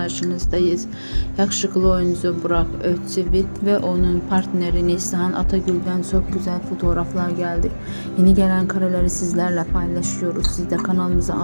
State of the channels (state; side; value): inverted; both; correlation -1.00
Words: Yakışıklı oyuncu Burak Özçivit ve onun partneri Neslihan Atagül'den çok güzel fotoğraflar geldi. Yeni gelen kareleri sizlerle paylaşıyoruz. Siz de kanalımıza